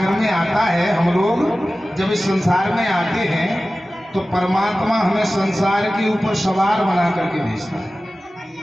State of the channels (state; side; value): normal; both; correlation 0.96